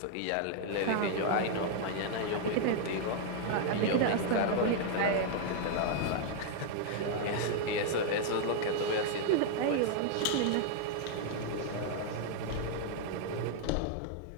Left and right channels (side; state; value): both; different; correlation 0.00